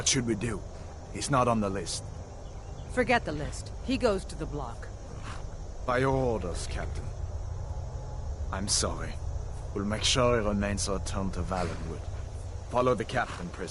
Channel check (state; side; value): identical; both; correlation 1.00